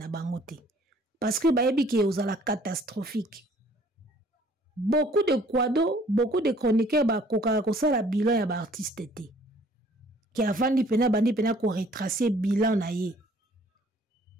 bango te. Parce que ba yebi ke ozala catastrophique. Beaucoup de kwado, beaucoup de chroniqueurs ba koka ko sala bilan ya ba artiste te. Qui avant bandi pena ko retracer bilan na ye.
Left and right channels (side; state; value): both; normal; correlation 0.57